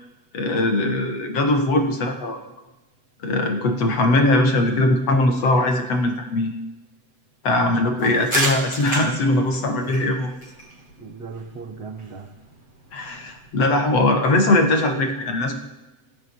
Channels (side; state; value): right; late; 7.9 ms